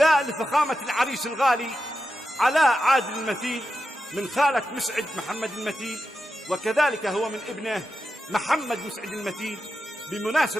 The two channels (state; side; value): normal; both; correlation 0.89